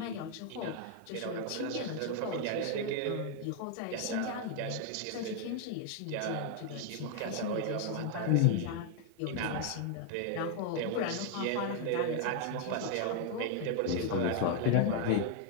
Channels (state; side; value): different; both; correlation 0.00